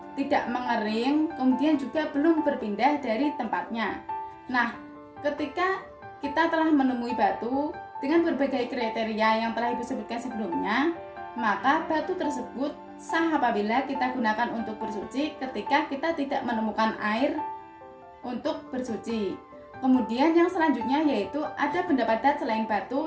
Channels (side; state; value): both; identical; correlation 1.00